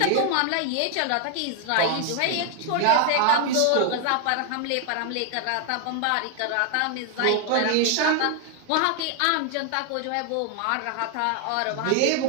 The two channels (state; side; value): different; both; correlation 0.00